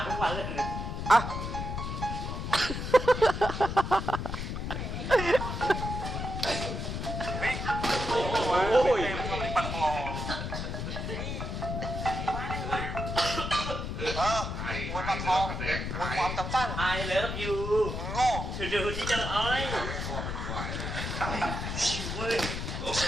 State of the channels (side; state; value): left; noise; rumble, 4 dB below the sound